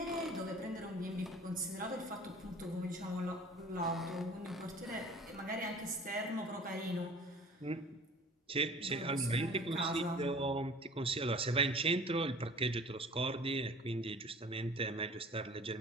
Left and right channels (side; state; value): both; normal; correlation 0.46